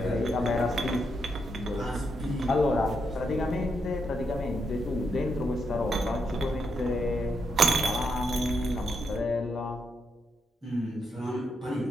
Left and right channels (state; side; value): normal; both; correlation 0.80